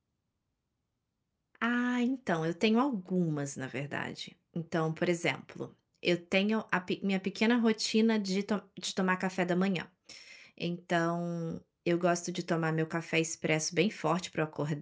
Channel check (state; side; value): identical; both; correlation 1.00